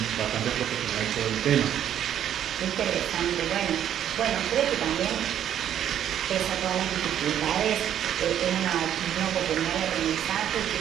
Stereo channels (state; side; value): quieter; left; 10.2 dB